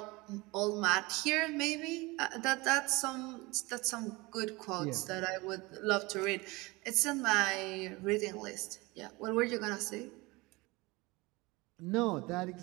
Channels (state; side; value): quieter; left; 23.4 dB